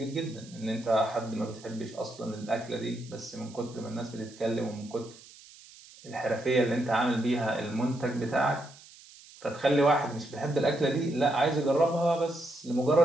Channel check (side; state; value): right; noise; hiss, 21 dB below the sound